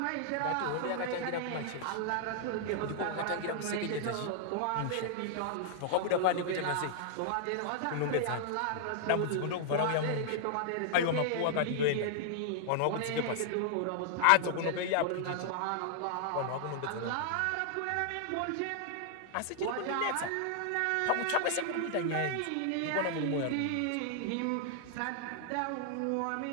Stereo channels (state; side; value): different; both; correlation 0.00